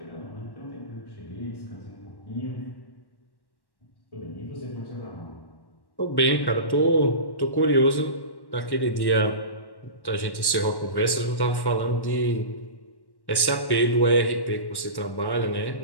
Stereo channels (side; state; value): right; late; 1.1 ms